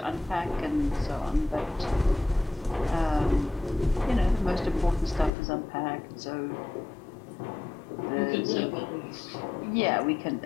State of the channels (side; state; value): right; drops out; at 5.3 s